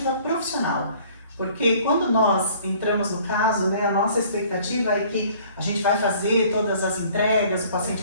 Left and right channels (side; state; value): both; inverted; correlation -0.54